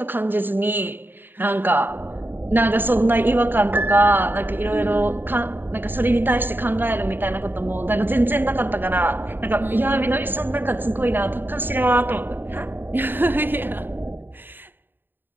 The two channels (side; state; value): left; late; 0.095 ms